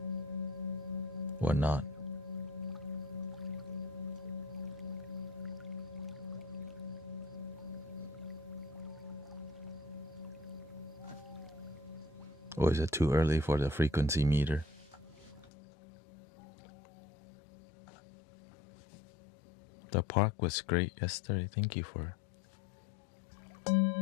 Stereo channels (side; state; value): right; drops out; at 15.5 s